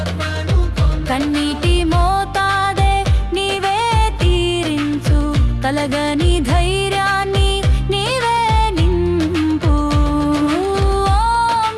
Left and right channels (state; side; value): identical; both; correlation 1.00